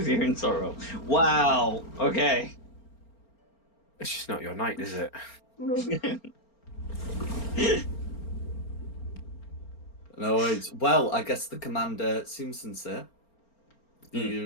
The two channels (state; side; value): late; right; 4.4 ms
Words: you in sorrow. Wow. Okay. It's just not your night, is it? No. No worries. Well, I guess the commander seems sincere.